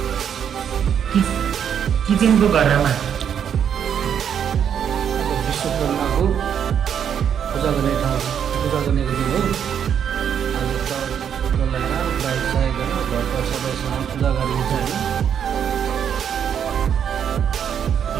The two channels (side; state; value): left; quieter; 8.4 dB